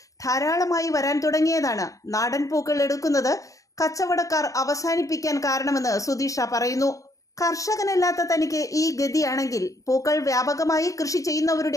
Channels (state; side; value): late; right; 0.16 ms